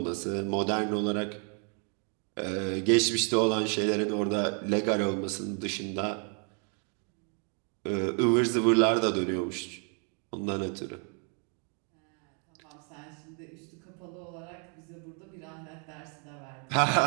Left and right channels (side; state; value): left; quieter; 39.6 dB